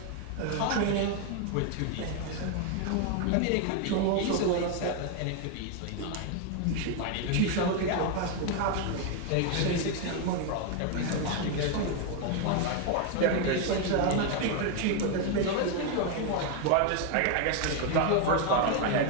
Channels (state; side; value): different; both; correlation 0.01